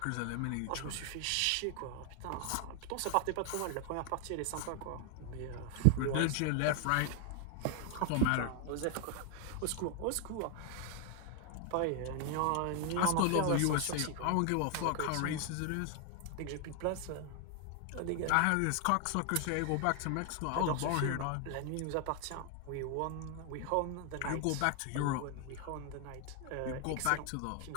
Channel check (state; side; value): different; both; correlation 0.00